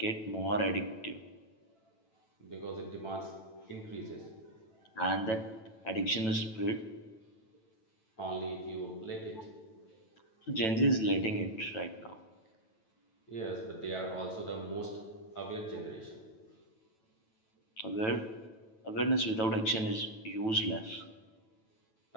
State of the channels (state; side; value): late; right; 9.1 ms